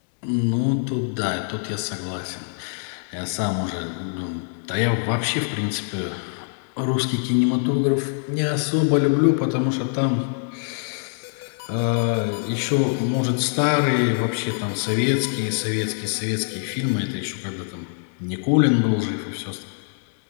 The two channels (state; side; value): silent; right; digital silence